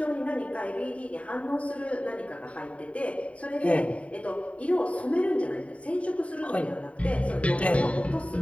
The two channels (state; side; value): late; right; 0.065 ms